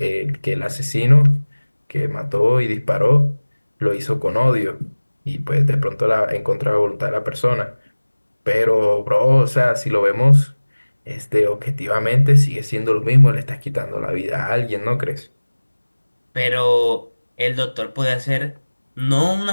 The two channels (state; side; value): inverted; both; correlation -1.00